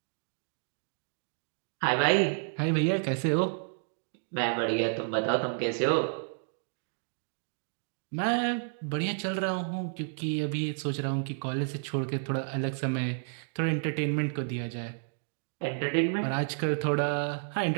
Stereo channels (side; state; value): left; silent; digital silence